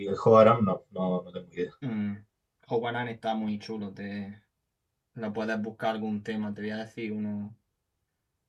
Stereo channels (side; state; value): both; identical; correlation 1.00